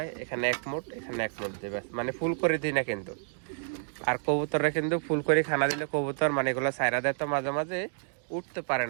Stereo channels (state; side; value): silent; left; digital silence